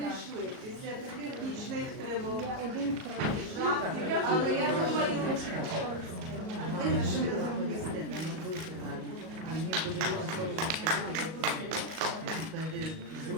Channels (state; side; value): late; left; 38 ms